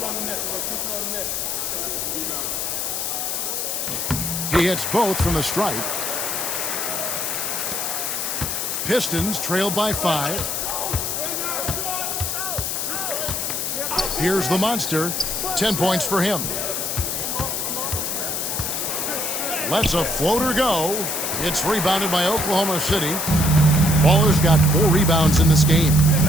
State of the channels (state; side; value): noise; left; hiss, 2 dB below the sound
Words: He hits both from the stripe. Pistons trailed by 5. Here's the monster. 10 points for him. Lets a floater go. It's rebounded by Oklahoma City. Baller's got 4 rebounds in this game.